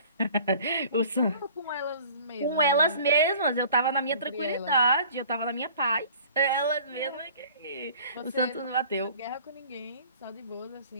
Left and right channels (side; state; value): both; inverted; correlation -0.49